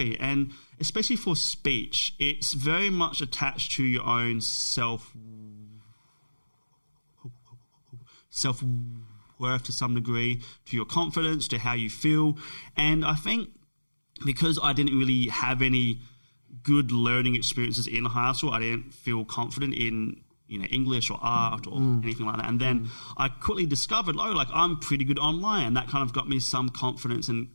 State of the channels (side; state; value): both; inverted; correlation -1.00